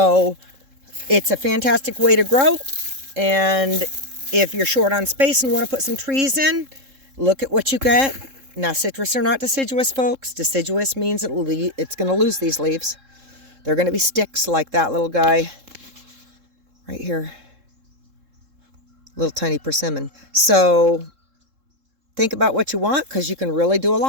it's a fantastic way to grow. And if you're short on space and want to put some trees in, look at what you get. Now, citrus are not deciduous, folks. Deciduous means it's going to lose these leaves. They're going to be sticks like that little guy right here. Little tiny persimmon. So think about what you want, because you can really do a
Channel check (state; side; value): late; left; 3.7 ms